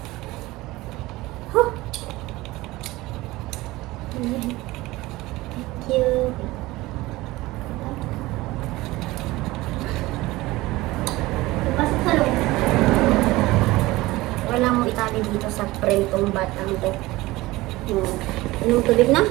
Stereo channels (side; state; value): left; quieter; 19.4 dB